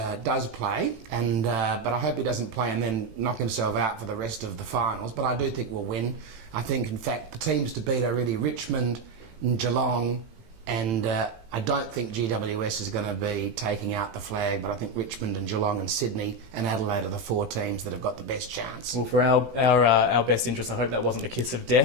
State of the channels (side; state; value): left; late; 18 ms